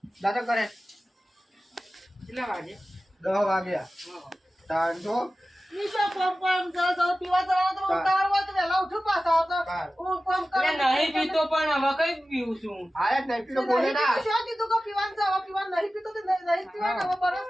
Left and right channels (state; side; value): normal; both; correlation 0.95